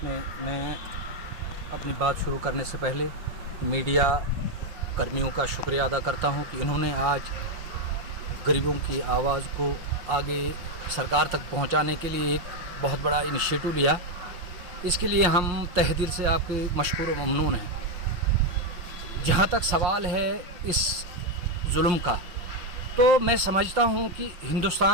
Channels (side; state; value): left; late; 5.6 ms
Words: मैं अपनी बात शुरू करने से पहले मीडिया कर्मियों का शुक्रिया अदा करता हूं कि इन्होंने आज गरीबों की आवाज़ को आगे सरकार तक पहुंचाने के लिए एक बहुत बड़ा इनिशिएटिव लिया। इसके लिए हम तहे दिल से आपके मशकूर व ममनून हैं। जहाँ तक सवाल है इस जुल्म का, तो मैं समझता हूँ कि